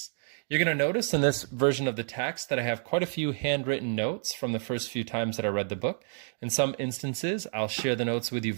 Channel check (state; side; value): silent; left; 58 dB below the other